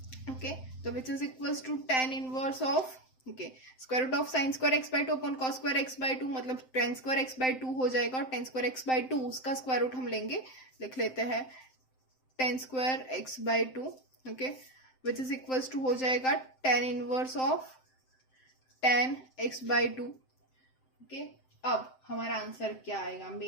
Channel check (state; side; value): late; right; 7.7 ms